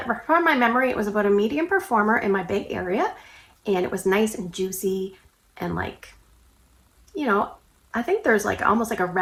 from my memory, it was about a medium performer in my Bay Area, and it was nice and juicy and like, you know, I think there's like almost like a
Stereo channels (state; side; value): identical; both; correlation 1.00